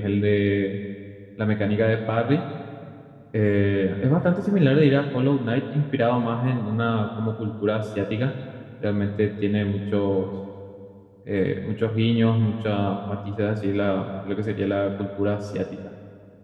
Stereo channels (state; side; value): identical; both; correlation 1.00